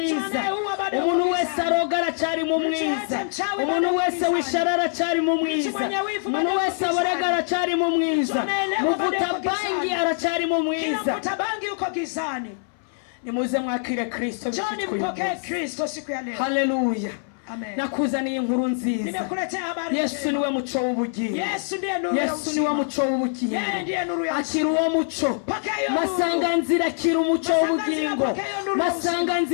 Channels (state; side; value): silent; right; 62 dB below the other